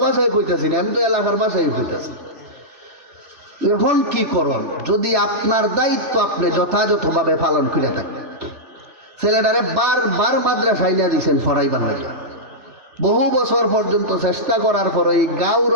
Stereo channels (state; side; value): late; left; 3.4 ms